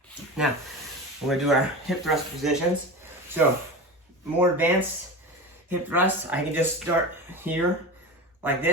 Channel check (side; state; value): both; normal; correlation 0.27